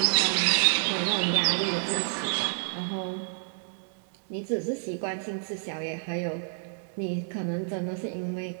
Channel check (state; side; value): silent; left; digital silence